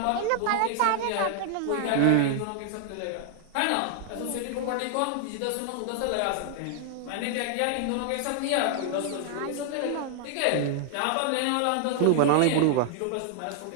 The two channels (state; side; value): different; both; correlation 0.00